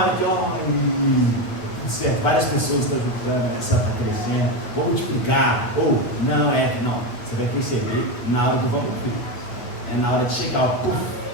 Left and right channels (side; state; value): right; late; 8.8 ms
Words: que, tudo certo, várias pessoas estão juntando, essa está crescendo, vou multiplicar, ou não. Você vai perceber na hora do vamos ver. É na hora de chegar,